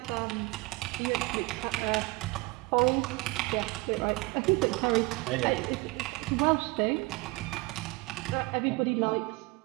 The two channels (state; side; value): quieter; left; 23.9 dB